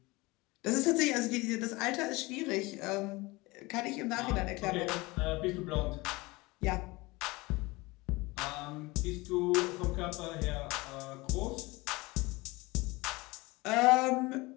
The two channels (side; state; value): right; quieter; 22.8 dB